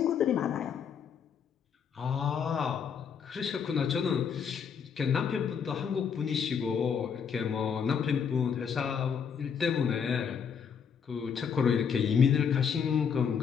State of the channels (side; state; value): right; quieter; 7.0 dB